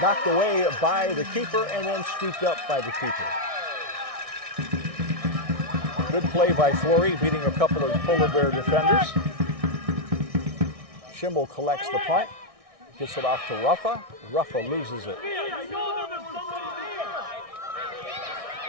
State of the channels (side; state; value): left; late; 1.6 ms